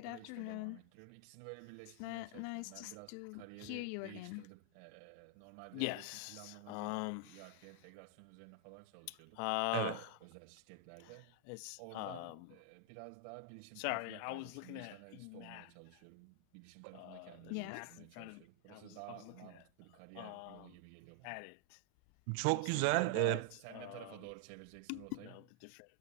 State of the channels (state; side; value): different; both; correlation 0.00